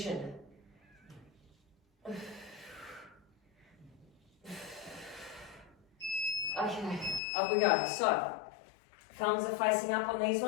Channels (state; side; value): drops out; right; at 7.2 s